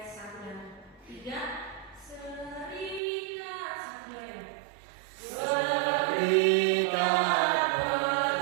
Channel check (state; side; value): drops out; left; at 3.0 s